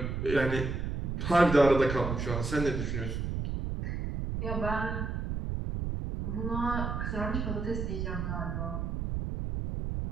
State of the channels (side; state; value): right; noise; rumble, 3 dB below the sound